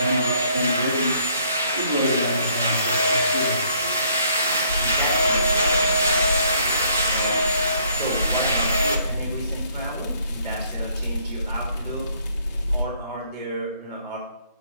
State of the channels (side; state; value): both; inverted; correlation -0.64